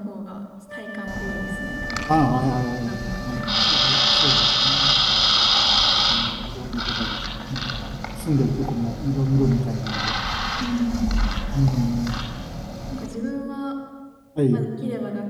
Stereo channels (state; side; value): identical; both; correlation 1.00